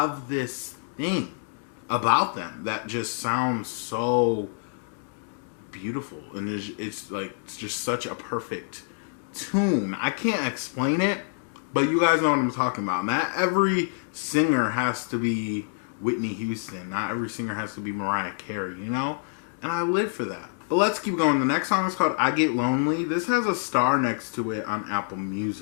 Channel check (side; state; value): right; silent; digital silence